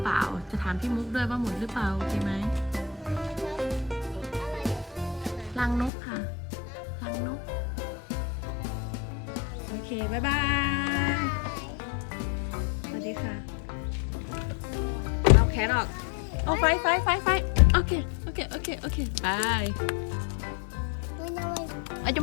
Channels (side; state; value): right; drops out; at 5.9 s